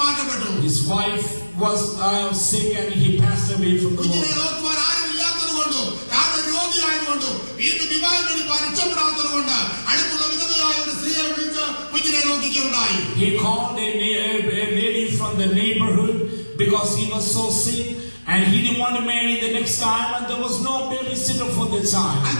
മാറ്റപ്പെട്ടു. His wife was sick and he passed away from the കുഞ്ഞിനെ world. നോക്കുവാൻ ആരും ഇല്ലാത്തത് കൊണ്ടും താൻ രോഗിയായതുകൊണ്ടും വീണ്ടും വിവാഹം കഴിപ്പാൻ ഇഷ്ടപ്പെടാത്തത് കൊണ്ട് അടുത്തുള്ള വിധവയായ ഒരു സ്ത്രീയെ വിളിച്ച് കുഞ്ഞിനെ നോക്കിക്കുകയുണ്ടായി. He called a lady from the neighborhood because he was so sick and he didn't want to marry the next time, and there was no babysitter for the child.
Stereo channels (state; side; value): inverted; both; correlation -1.00